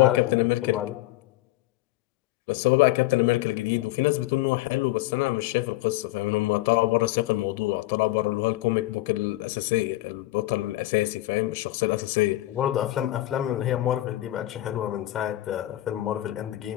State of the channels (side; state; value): right; quieter; 17.0 dB